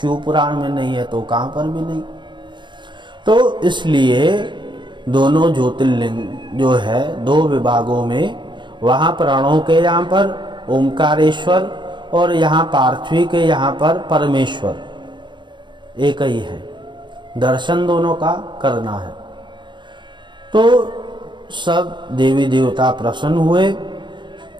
पुराण में नहीं है तो कहाँ पर भी नहीं। तो इसलिए दोनों ज्योतिर्लिंग जो है दो विभागों में, वहाँ प्रणव के यहाँ पर ओमकारेश्वर और यहाँ पार्थिवी के यहाँ पर परमेश्वर एक ही है, दर्शन दोनों का करना है। तो सब देवी देवता प्रसन्न हुए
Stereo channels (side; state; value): left; late; 0.23 ms